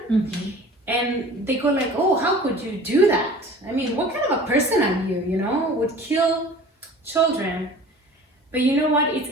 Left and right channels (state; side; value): normal; both; correlation 0.43